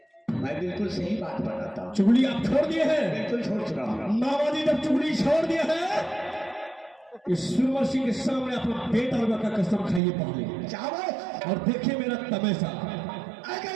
मैं बिल्कुल सही बात बताता हूँ। चुगली आप छोड़ दिए हैं? बिल्कुल छोड़ चुका हूँ। मामा जी जब चुगली छोड़ दिए हैं, इस सुरमन सिंह के सामने अपना बेटा रुआ का कसम खाइए पहले, चावल और देखिए मेरा तमाशा। अगर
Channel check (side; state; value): left; drops out; at 10.0 s